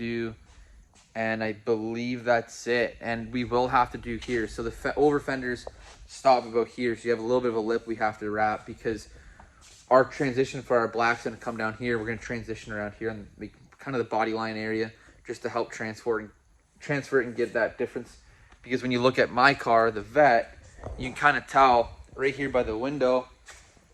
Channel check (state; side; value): identical; both; correlation 1.00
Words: And I believe that's it. And we will have to do here. So the over fenders stop about here. So you have a little bit of a lip we have to wrap, because our transition for our black's going to come down here. We're going to transition around here and make kind of the body line area, just to help transfer it and get that difference. Because when you look at my car, the Vet, you can kind of tell right here by the window,